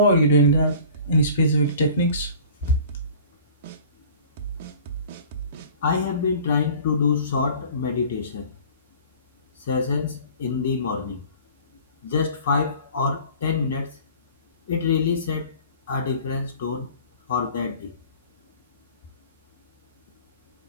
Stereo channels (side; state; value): both; inverted; correlation -0.46